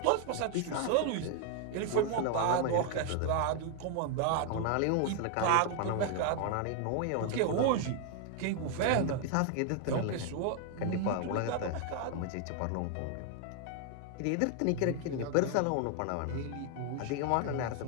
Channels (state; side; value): different; both; correlation 0.00